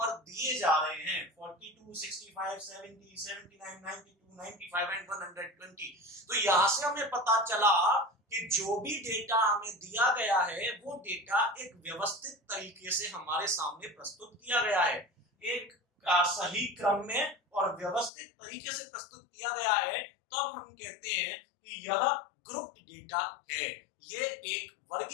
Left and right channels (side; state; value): right; drops out; at 18.1 s